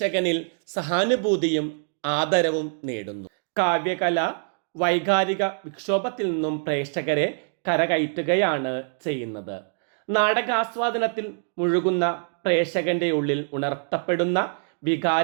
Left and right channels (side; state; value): left; silent; 62 dB below the other